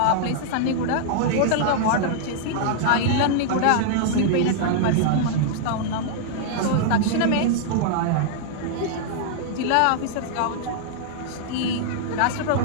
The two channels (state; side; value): different; both; correlation -0.01